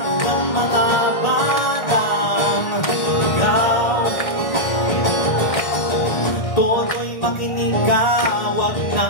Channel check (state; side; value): late; right; 1.6 ms